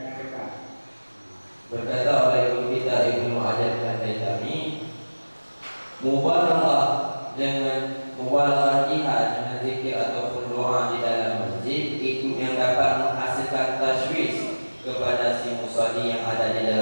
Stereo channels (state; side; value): inverted; both; correlation -1.00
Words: berkata oleh Ibnu kita Ibnu Hajar Al-Haytami, mubalaghah jihad dengan zikir ataupun doa di dalam masjid itu yang dapat menghasilkan tashwish kepada si musalli yang ada di